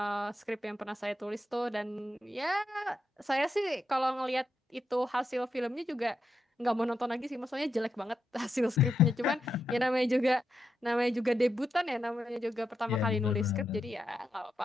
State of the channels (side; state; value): both; normal; correlation 0.85